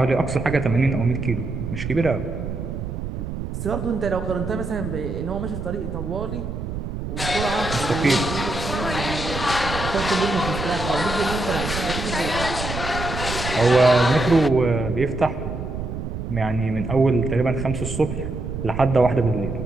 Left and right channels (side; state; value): right; noise; rumble, 6 dB below the sound